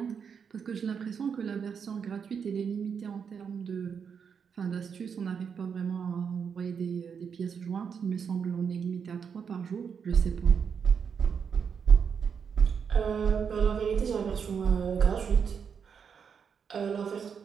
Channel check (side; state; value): left; quieter; 6.7 dB